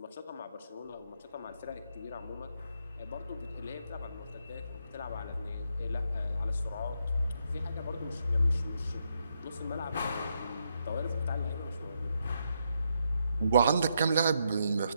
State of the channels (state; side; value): inverted; both; correlation -0.79